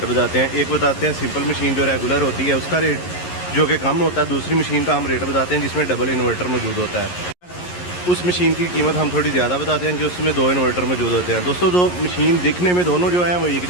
बताते हैं। एक बताते हैं सिंपल मशीन जो रेगुलर होती है उसका रेट जो कि कम होता है, दूसरी मशीन का हम रेट बताते हैं जिसमें डबल इन्वर्टर मौजूद होता है। उस मशीन की कीमत हम थोड़ी ज़्यादा बताते हैं जिसमें दो इन्वर्टर मौजूद होते हैं। दोस्तों, दो मशीन दिखने में दोनों जो हैं वो एक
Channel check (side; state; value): right; late; 11 ms